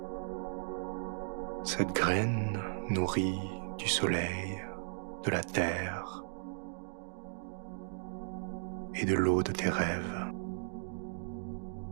Cette graine nourrie du soleil, de la terre et de l'eau de tes rêves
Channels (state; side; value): silent; left; digital silence